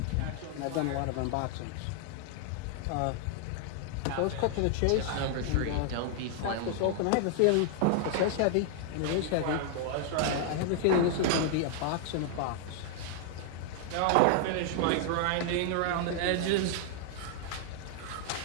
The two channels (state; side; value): different; both; correlation 0.00